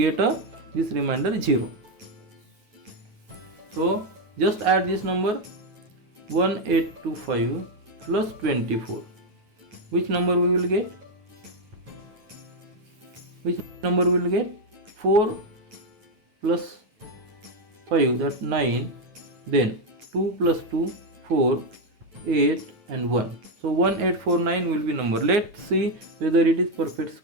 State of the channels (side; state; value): left; late; 9.1 ms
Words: this remainder 0. So just add this number 1825 plus 24. Which number we will get? Which number we will get? 4 plus 5, that 9, then 2 plus 2, 4, 8 and 1. So 1849 will be number. Let's see whether it is perfect